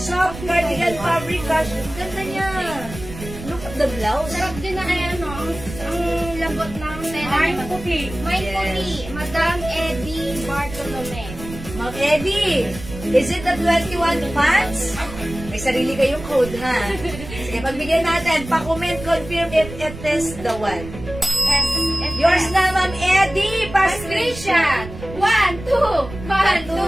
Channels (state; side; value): noise; right; rumble, 12 dB below the sound